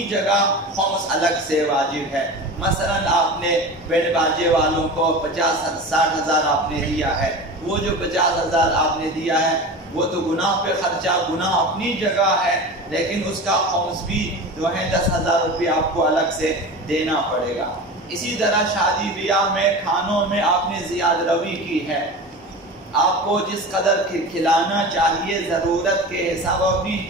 جگہ، خمس الگ سے واجب ہے۔ مثلا آپ نے بینڈ باجے والوں کو 50-60 ہزار آپ نے دیا ہے، وہ جو 50 ہزار آپ نے دیا ہے وہ تو گناہ پہ خرچہ، گناہ اپنی جگہ ہے، لیکن اس کا خمس بھی جو ہے 10,000 روپے آپ کو الگ سے دینا پڑے گا۔ اسی طرح شادی بیاہ میں کھانوں میں آپ نے زیادہ روی کی ہے، آپ کو جس قدر کھلانا چاہیے ضرورت کے حساب، اپنی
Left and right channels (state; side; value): normal; both; correlation 0.31